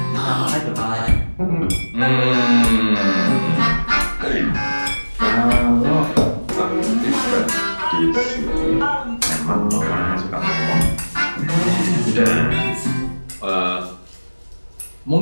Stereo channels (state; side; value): inverted; both; correlation -1.00